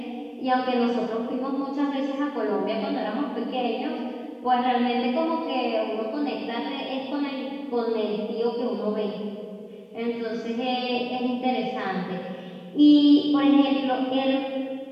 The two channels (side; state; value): both; identical; correlation 1.00